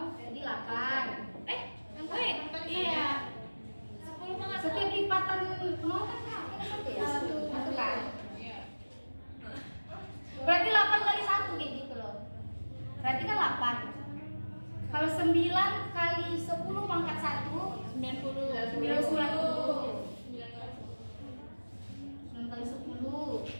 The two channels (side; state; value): both; inverted; correlation -1.00